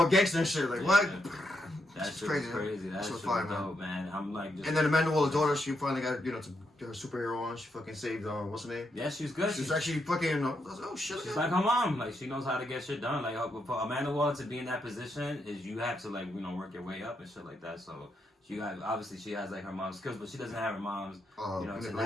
gangster and shit. Like what? Yeah. That shit was crazy. That shit was fire, dope, man. I'm like. And then Amanda Waller's daughter, she finally got her superhero on. She fucking saved what's her name? Yeah, she's good. She's actually fucking. Oh shit. She's like her mom. Like she knows how to get shit done. Like for Amanda Waller to be in that position is you have to work your way up and shit like that. So obviously she has like her mom's skills, but she doesn't have her mom's manipulation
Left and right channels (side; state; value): both; normal; correlation 0.81